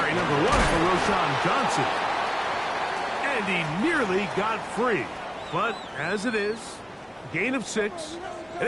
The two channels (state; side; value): identical; both; correlation 1.00